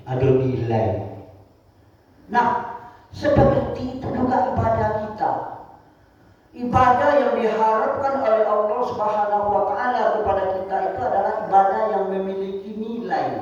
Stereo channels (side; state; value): both; identical; correlation 1.00